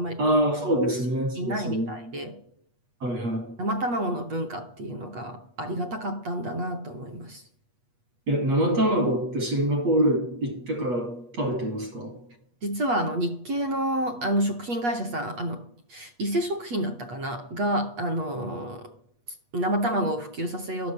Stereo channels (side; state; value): left; late; 8.3 ms